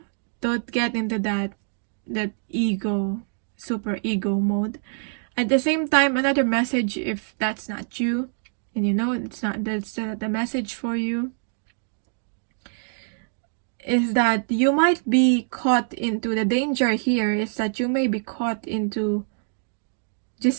don't get into that ego, super ego mode. At the same time, another message, if that's not you, and it's not, that's the message for you, is that you might be caught into, the danger here is that you may be caught into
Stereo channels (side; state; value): left; silent; digital silence